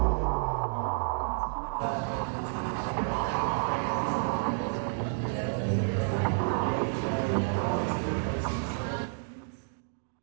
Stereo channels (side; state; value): left; silent; digital silence